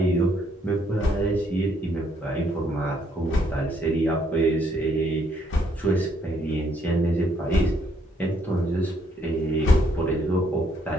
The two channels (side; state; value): both; normal; correlation 0.70